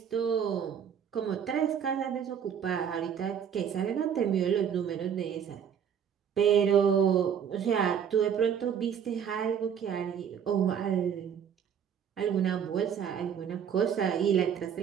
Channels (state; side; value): quieter; left; 8.1 dB